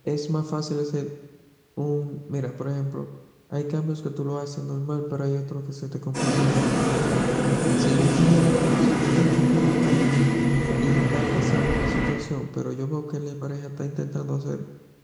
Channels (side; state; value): both; identical; correlation 1.00